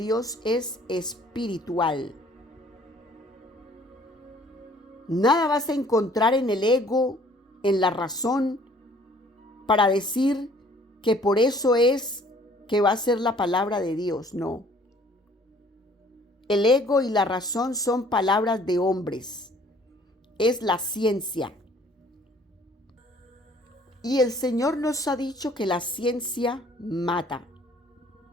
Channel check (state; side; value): normal; both; correlation 0.56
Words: es espiritual. Nada vas a encontrar en el ego, en la razón, para decir que por eso es que va a ser la palabra de Dios. No. El ego y la razón son palabras de hombres. Es la ciencia. Y el Señor nos ha dicho que la ciencia mata.